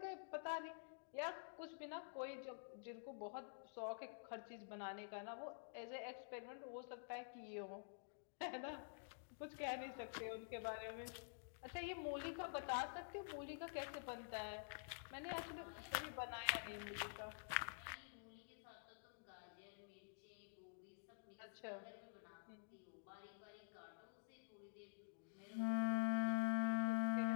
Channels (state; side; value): silent; right; digital silence